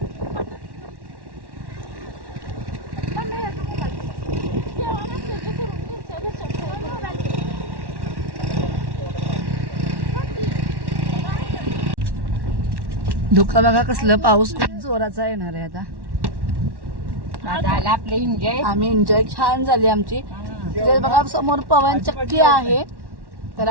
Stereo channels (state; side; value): late; left; 1.1 ms